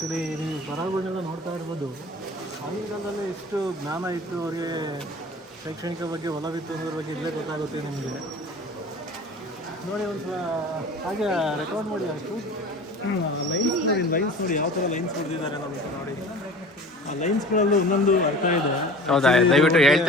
ನೀವು ಬರಹಗಳನ್ನೆಲ್ಲ ನೋಡ್ತಾ ಇರ್ಬೋದು. ಆಗಿನ ಕಾಲದಲ್ಲಿ ಎಷ್ಟು ಜ್ಞಾನ ಇತ್ತು ಅವರಿಗೆ, ಶೈಕ್ಷಣಿಕ ಬಗ್ಗೆ ಒಲವಿತ್ತು ಅನ್ನೋದ್ರ ಬಗ್ಗೆ ಇಲ್ಲೇ ಗೊತ್ತಾಗುತ್ತೆ ನಿಮಗೆ. ನೋಡಿ ಒಂದು ಸಲ ಹಾಗೆ ರೆಕಾರ್ಡ್ ಮಾಡಿ, ಅಷ್ಟು ಲೈನ್ಸ್ ನೋಡಿ ಯಾವ ಥರ ಲೈನ್ಸ್ ಹೊಡೆದಿದ್ದಾರೆ ನಮಗೆ. ನೋಡಿ ಆ ಲೈನ್ಸ್ಗಳಲ್ಲೂ ಒಂದೊಂದು ಅರ್ಥ ಇದೆ. ಹೌದಾ? ದಯವಿಟ್ಟು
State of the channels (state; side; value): normal; both; correlation 0.41